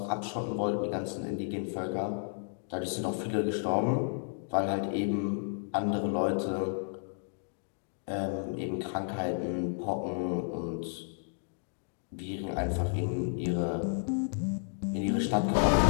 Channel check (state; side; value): silent; right; digital silence